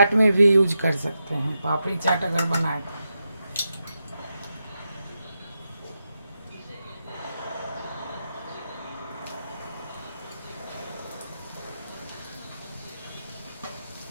में भी यूज कर सकते हैं। पापड़ी चाट अगर बनाए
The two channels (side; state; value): both; inverted; correlation -0.87